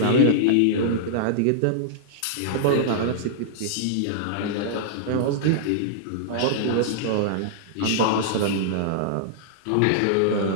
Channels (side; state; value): both; different; correlation -0.01